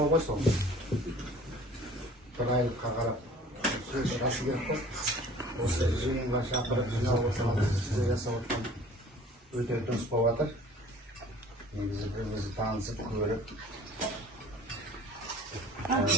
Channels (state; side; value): normal; both; correlation 0.48